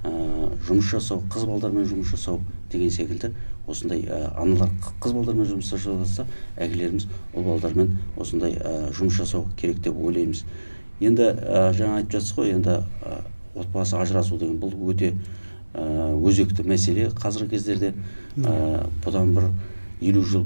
жұмыс жасау, қыз балдармен жұмыс жасау деген секілді осындай аналар қыз балдармен жұмыс жасаса, әкелеріміз ұл балдармен осындай жұмыс жасау керек деп ойлаймыз. Енді жаңа айтып жатсыз ғой, енді отбасы ажырасу деген бұл өте өзекті мәселе қазіргі кездерде. Бұдан бір 50 жыл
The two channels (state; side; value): inverted; both; correlation -1.00